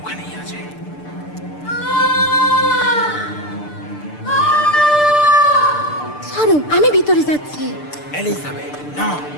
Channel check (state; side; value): late; right; 6.7 ms